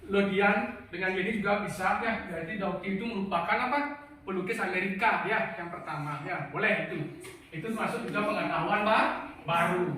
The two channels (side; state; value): both; identical; correlation 1.00